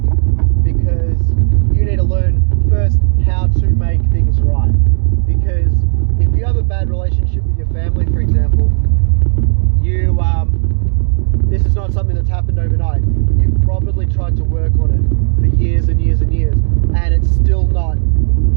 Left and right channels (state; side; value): silent; left; digital silence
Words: because you need to learn first how to make things right. Because if you have a bad relationship with your family, for example, this is not something that's happened overnight. You've probably tried to work on it for years and years and years, and it's still not